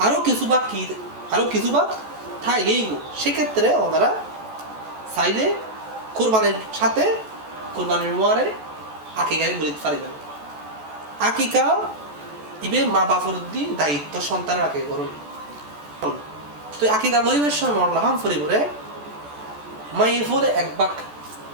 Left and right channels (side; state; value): left; late; 14 ms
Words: কিছু ভাগ থাই গেইগু সেক্ষেত্রে ওনারা চাইলে কুরবানির সাথে কুরবানির মোয়ারে আকিকায় গরিত পারিবেন আকিকা ইবে মা বাপর দি দায়িত্ব সন্তানের আকিকা করুন তো আকিকা গরিবের সময় মরলাম ফরিবরে মাইয়ে ফলে এক ভাগ